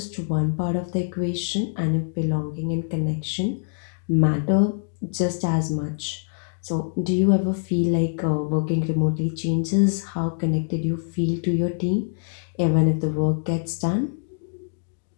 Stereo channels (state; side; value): silent; right; digital silence